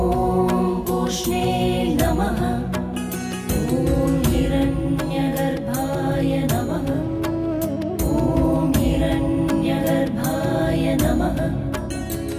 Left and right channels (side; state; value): both; identical; correlation 1.00